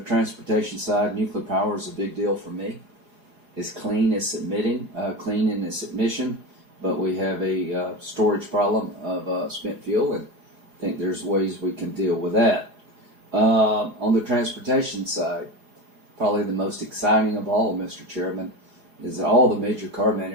side, nuclear power is a big deal for me. It's clean, it's clean in its emission, but we have a storage problem of spent fuel, and I think there's ways we can deal with that. On the transportation side, probably the most exciting of all, Mr. Chairman, is that all the major car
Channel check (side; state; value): left; late; 4.8 ms